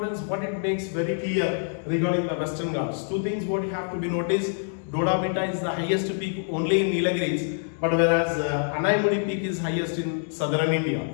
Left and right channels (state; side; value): silent; right; digital silence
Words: what it makes very clear regarding the Western Ghats. Two things what you have to be noticed: Doda Beta is the highest peak only in Nilgiris, but whereas Anaimudi peak is highest in southern India.